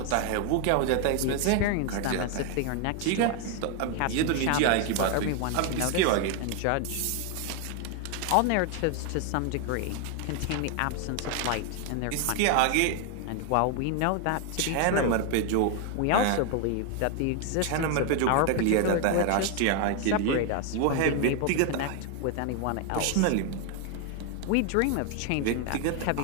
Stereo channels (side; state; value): both; different; correlation 0.01